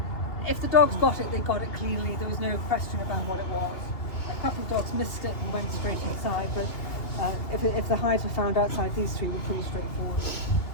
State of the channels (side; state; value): right; late; 2.8 ms